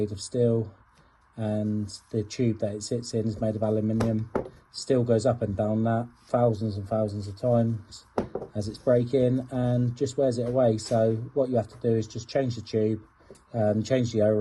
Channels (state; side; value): identical; both; correlation 1.00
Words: of steel and the tube that it sits in is made of aluminium. Still goes up and down that thousands and thousands of times as it's breaking and just wears it away. So what you have to do is just change the tube, change the